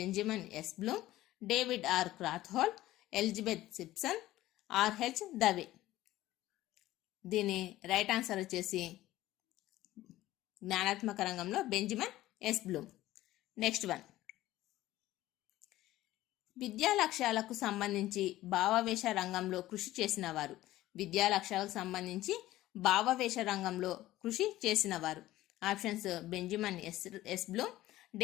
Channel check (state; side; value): quieter; right; 15.7 dB